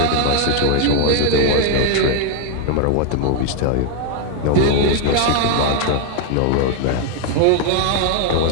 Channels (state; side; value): different; both; correlation 0.01